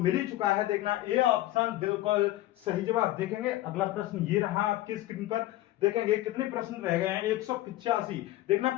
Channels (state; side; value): quieter; right; 16.0 dB